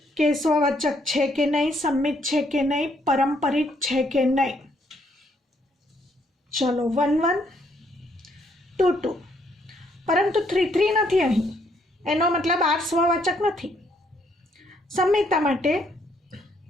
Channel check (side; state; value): both; normal; correlation 0.70